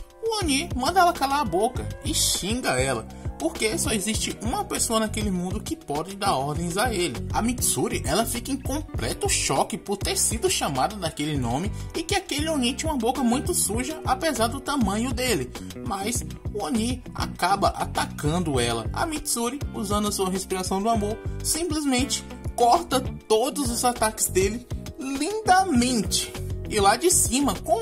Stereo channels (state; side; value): identical; both; correlation 1.00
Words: o Oni manda ela calar a boca e xinga ela, porque só existe uma pessoa naquele mundo que pode dar ordens a ele. A Mitsuri, ela fica em completo choque por ter sido chamada daquele nome e que aquele Oni tinha uma boca muito suja, apesar do tamanho dele. Mas o Oni acaba atacando ela. A Mitsuri, usando a sua respiração do amor, simplesmente corta todos os ataques dele lindamente. E lá de cima,